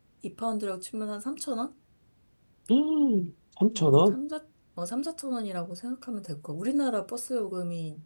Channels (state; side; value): inverted; both; correlation -1.00